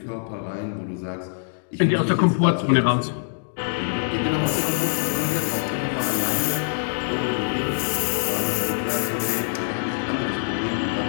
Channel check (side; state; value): right; silent; digital silence